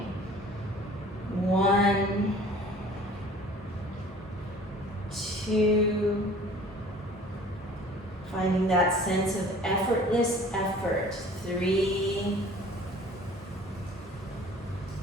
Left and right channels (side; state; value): both; normal; correlation 0.48